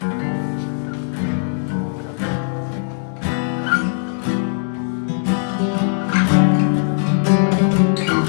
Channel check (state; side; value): silent; right; digital silence